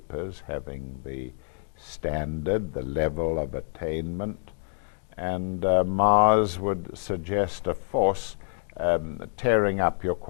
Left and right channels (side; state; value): right; silent; digital silence